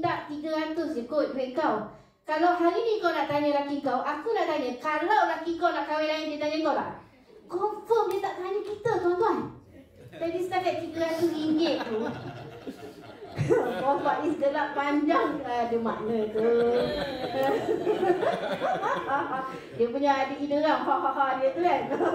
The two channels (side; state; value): both; identical; correlation 1.00